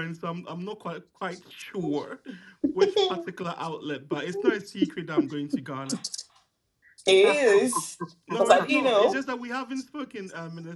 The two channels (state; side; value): identical; both; correlation 1.00